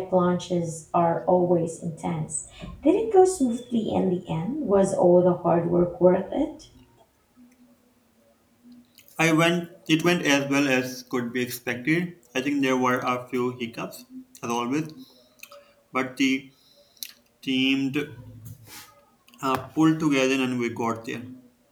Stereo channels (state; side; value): identical; both; correlation 1.00